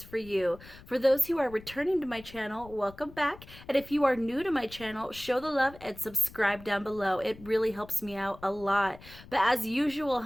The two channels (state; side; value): noise; left; rumble, 19 dB below the sound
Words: for you. For those who are returning to my channel, welcome back. And if you are new to my channel, show the love and subscribe down below. It really helps me out a lot. But as usual,